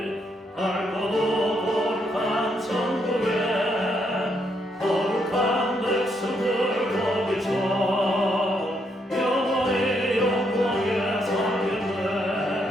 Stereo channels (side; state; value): both; normal; correlation 0.76